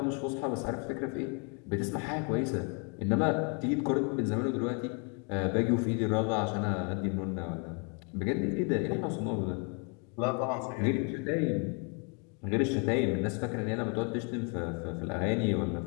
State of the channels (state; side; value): quieter; right; 36.5 dB